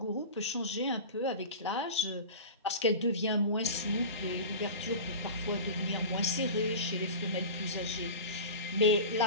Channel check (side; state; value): both; inverted; correlation -0.32